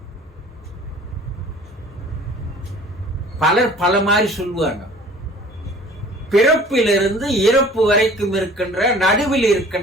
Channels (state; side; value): normal; both; correlation 0.49